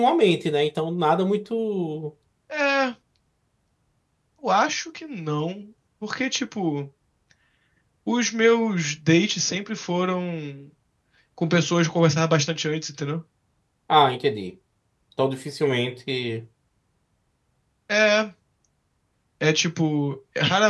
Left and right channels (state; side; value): identical; both; correlation 1.00